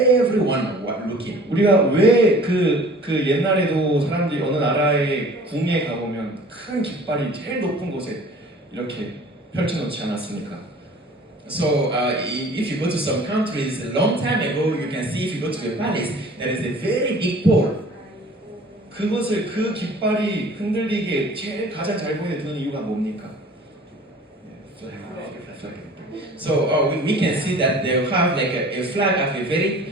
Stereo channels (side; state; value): both; normal; correlation 0.47